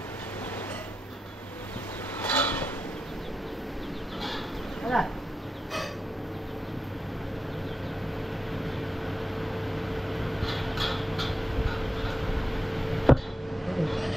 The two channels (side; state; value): both; normal; correlation 0.88